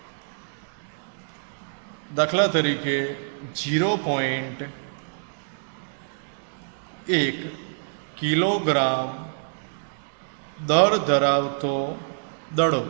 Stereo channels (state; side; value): silent; left; digital silence